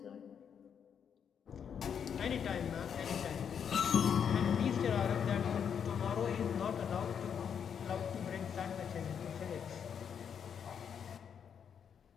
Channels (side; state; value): right; quieter; 7.7 dB